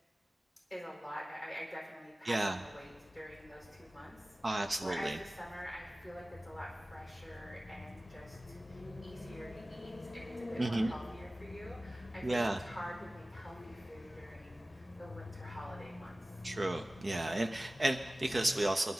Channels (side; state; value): both; normal; correlation 0.97